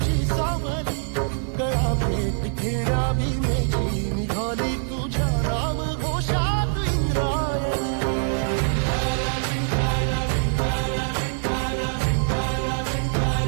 सावली गळा भेट घेण्या भीमेची निघाली तुझ्या राम घोषात इंद्रायणी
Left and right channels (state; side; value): silent; left; digital silence